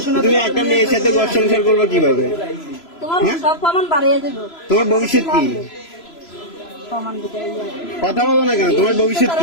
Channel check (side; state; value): right; late; 3.0 ms